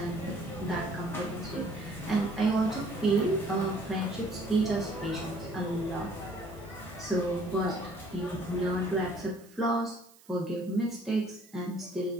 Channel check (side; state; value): right; noise; hiss, 26 dB below the sound